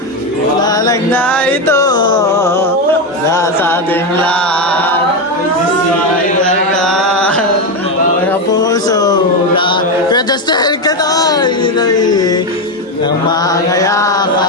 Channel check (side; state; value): both; normal; correlation 0.10